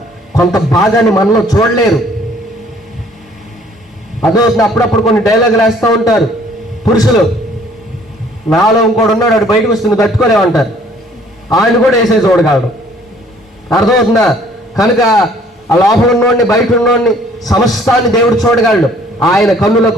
కొంత భాగాన్ని మనలో చూడలేరు. అదో అప్పుడప్పుడు కొన్ని డైలాగులు వేస్తూ ఉంటారు పురుషులు. నాలో ఇంకోటి ఉన్నాడు, వాడు బయటకు వస్తుంది తట్టుకోలేమంటారు, ఆయన కూడా వేసే చూడగలడు. అర్థమవుతుందా? కనుక ఆ లోపల ఉన్నోడిని బయట ఉన్నోడిని సమస్తాన్ని దేవుడు చూడగలడు. ఆయన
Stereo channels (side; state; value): both; normal; correlation 0.58